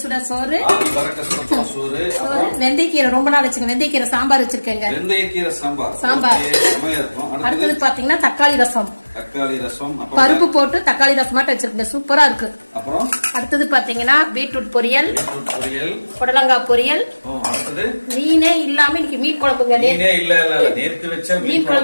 சுட சோறு, சோறு, வெந்தயக்கீரை ரொம்ப நாள் வச்சுங்க, வெந்தயக்கீரை சாம்பார் வச்சிருக்கேங்க. வெந்தயக்கீரை சாம்பார் இருக்கும். அடுத்தது பாத்தீங்கன்னா தக்காளி ரசம். தக்காளி ரசம் பருப்பு போட்டு தக்காளி ரசம் மட்டும் வச்சிருக்கேன், சூப்பரா இருக்கு. அப்புறம் அடுத்தது பாத்தீங்கன்னா பீட்ரூட் பொரியல், புடலங்காய் பொரியல். மீனே இல்லாம இன்னைக்கு மீன் குழம்புங்க. நேத்து வச்ச மீன்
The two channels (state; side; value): inverted; both; correlation -1.00